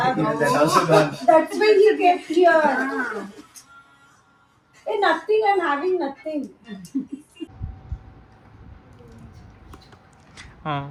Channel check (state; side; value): identical; both; correlation 1.00